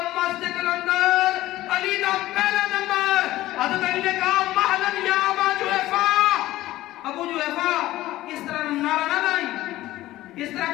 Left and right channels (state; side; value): quieter; right; 16.0 dB